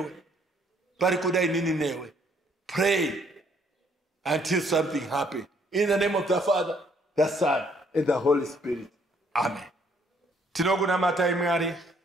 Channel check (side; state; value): both; normal; correlation 0.66